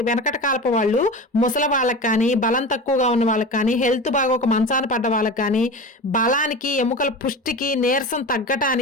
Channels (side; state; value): both; normal; correlation 0.30